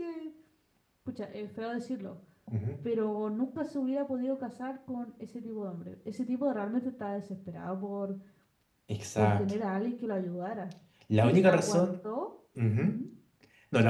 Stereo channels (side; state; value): both; identical; correlation 1.00